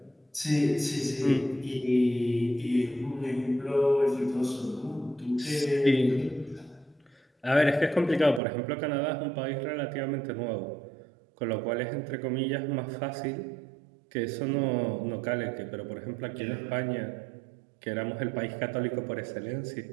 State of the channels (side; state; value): left; drops out; at 8.4 s